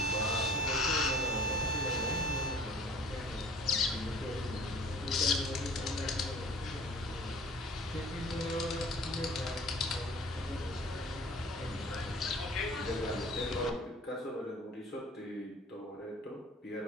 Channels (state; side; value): normal; both; correlation 0.48